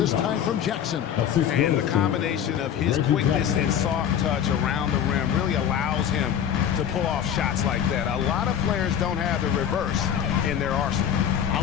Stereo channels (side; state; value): right; quieter; 9.2 dB